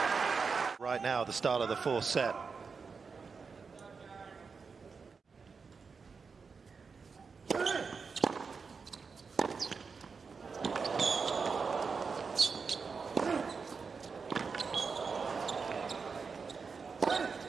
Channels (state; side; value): quieter; left; 5.2 dB